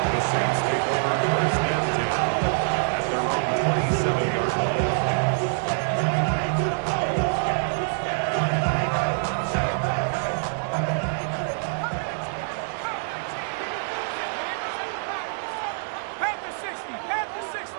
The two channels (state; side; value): silent; left; digital silence